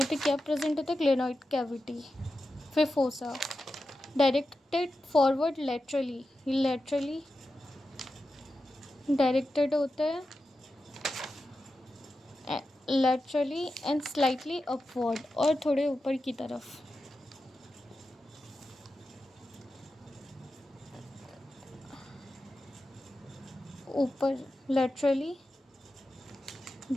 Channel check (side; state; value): both; normal; correlation 0.91